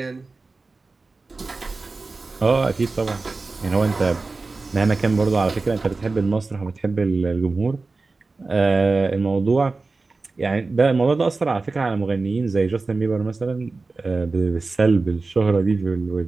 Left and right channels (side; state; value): left; quieter; 3.7 dB